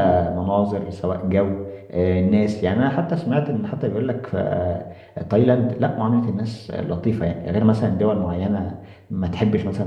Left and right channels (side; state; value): both; identical; correlation 1.00